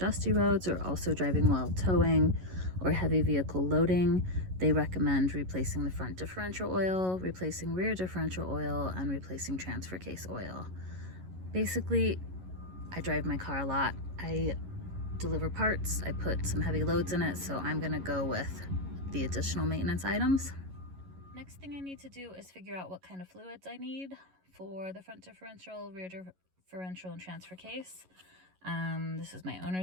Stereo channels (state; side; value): late; left; 11 ms